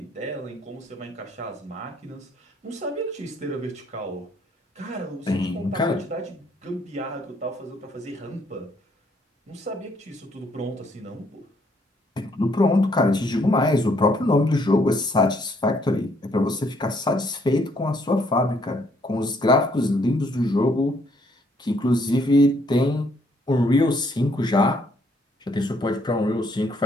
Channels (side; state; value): both; normal; correlation 0.68